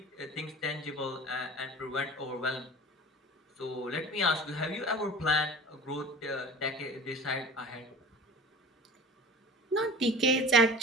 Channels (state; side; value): normal; both; correlation 0.38